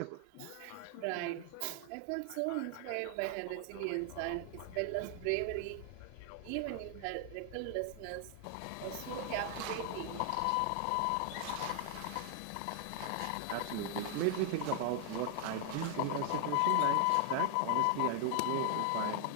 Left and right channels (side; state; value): both; different; correlation 0.00